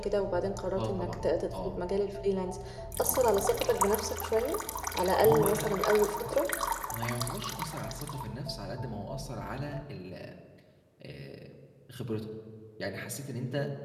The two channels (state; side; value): identical; both; correlation 1.00